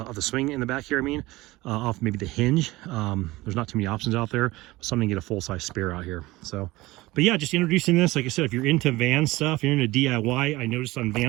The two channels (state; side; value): quieter; left; 19.6 dB